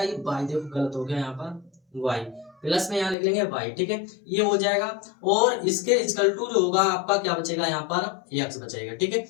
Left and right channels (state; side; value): drops out; right; at 3.2 s